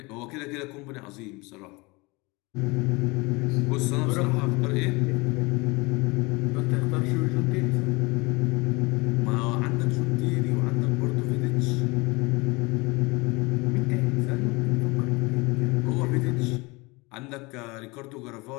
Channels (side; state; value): right; quieter; 25.2 dB